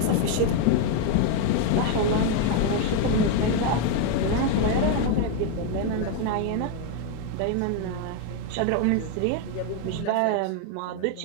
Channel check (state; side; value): different; both; correlation 0.01